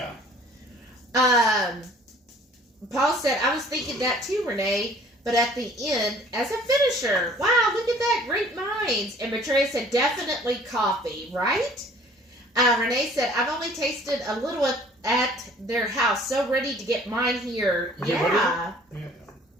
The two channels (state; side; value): normal; both; correlation 0.53